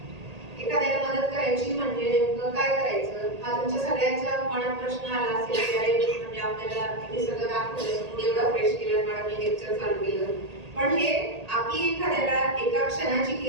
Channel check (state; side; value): late; left; 1.8 ms